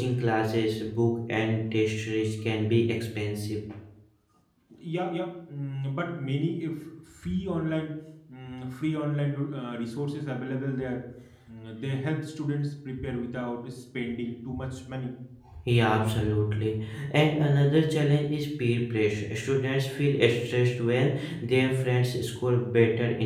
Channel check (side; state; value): both; identical; correlation 1.00